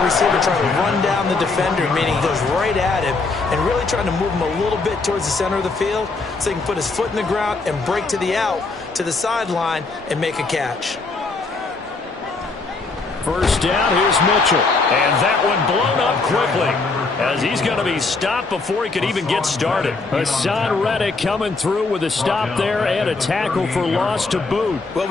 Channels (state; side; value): quieter; right; 3.8 dB